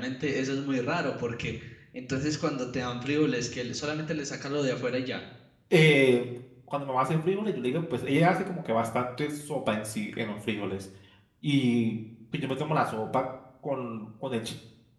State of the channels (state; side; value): identical; both; correlation 1.00